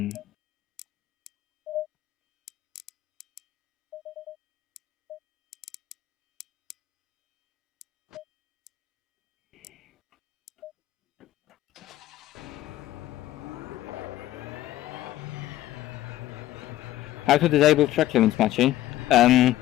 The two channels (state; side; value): quieter; right; 14.4 dB